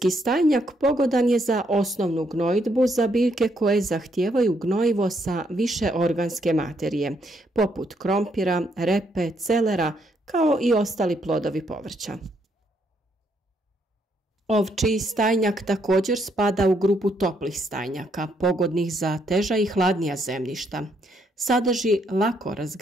stajnjak pogodan je za osnovnu gnojidbu za biljke koje zahtijevaju gnojivo sa više organske materije, poput krompira, repe, celera, kao i ostali plodovi povrća. Ovčji stajnjak također spada u grupu toplih stajnjaka, pogodnih za teža i hladnija zemljišta. Sadrži lako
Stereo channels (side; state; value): both; normal; correlation 0.74